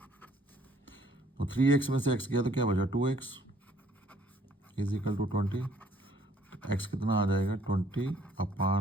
तो 3x में से x गया तो क्या बचा 2x इज इक्वल टू 20। तो x कितना आ जाएगा 20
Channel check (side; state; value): both; normal; correlation 0.62